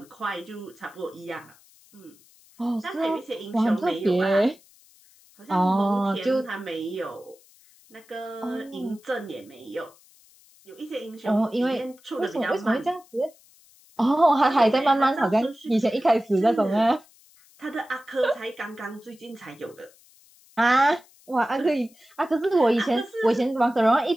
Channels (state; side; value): noise; left; hiss, 28 dB below the sound